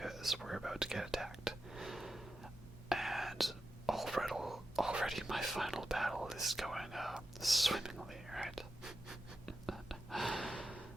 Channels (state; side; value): normal; both; correlation 0.89